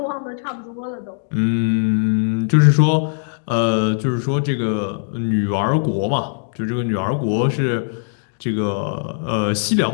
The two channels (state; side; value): silent; right; digital silence